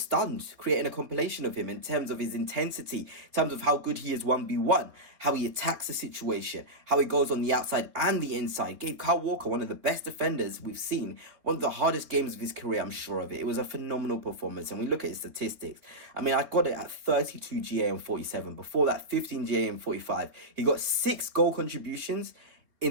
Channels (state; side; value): late; left; 3.6 ms